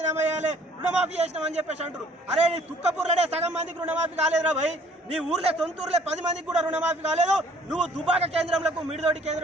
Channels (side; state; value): both; normal; correlation 0.57